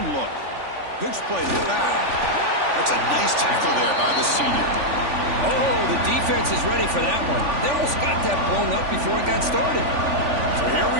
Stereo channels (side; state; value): left; late; 3.4 ms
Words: look. Pitch play to the back. That's a nice tackle there by the senior. Oh, the defense is ready for that one. They almost got that blown up before it got started. So here we